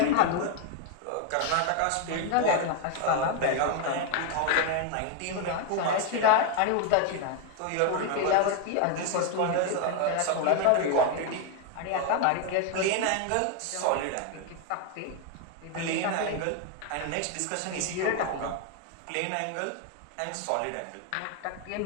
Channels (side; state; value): both; different; correlation 0.01